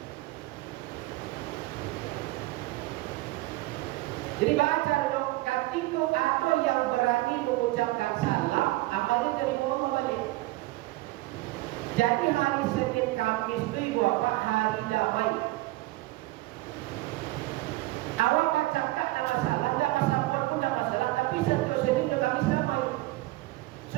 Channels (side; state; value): left; quieter; 19.2 dB